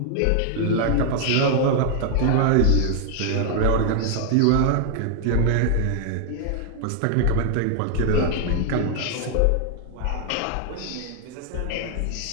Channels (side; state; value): both; different; correlation 0.00